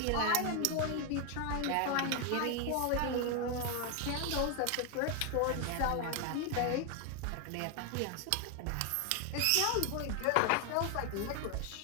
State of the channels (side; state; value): both; different; correlation 0.01